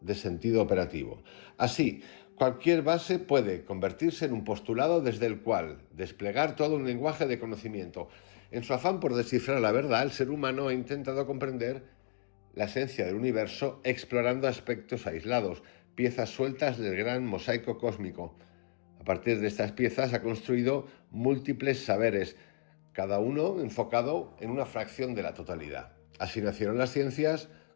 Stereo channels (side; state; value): right; silent; digital silence